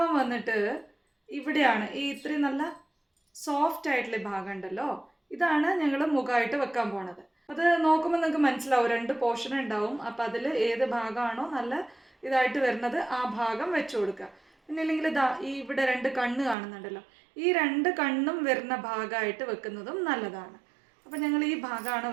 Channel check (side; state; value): left; drops out; at 16.6 s